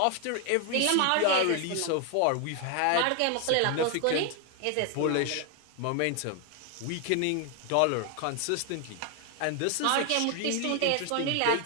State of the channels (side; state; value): both; different; correlation 0.01